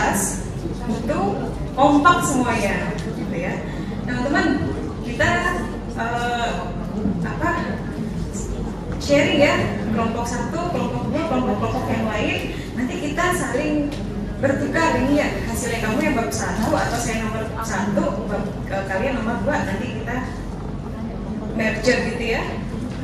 itu kompak semuanya, gitu ya. Nah teman, kita sharing ya, kelompok satu, kelompok dua, kelompok yang lain. Nanti kita saling bertukar ini ya, hasilnya kamu yang bab 1 atau saya nomor 1, kalian nomor 2. Nanti kita merger gitu ya.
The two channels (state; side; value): identical; both; correlation 1.00